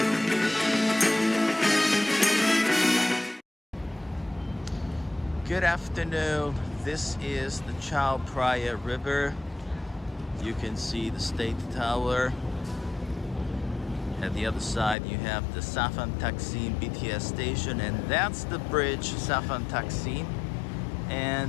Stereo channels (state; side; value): drops out; right; at 15.0 s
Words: Good afternoon. This is the Chaloem Phra River. You can see the State Tower. At the other side you have the Safan Taksim BTS station, and that's the bridge Safan Taksim.